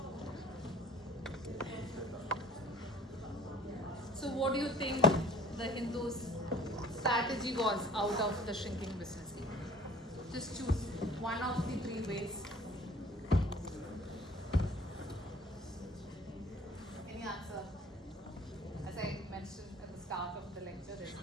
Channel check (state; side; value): normal; both; correlation 0.49